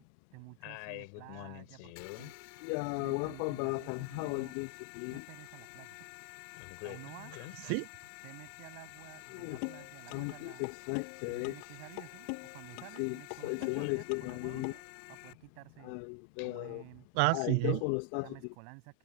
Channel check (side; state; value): both; different; correlation 0.00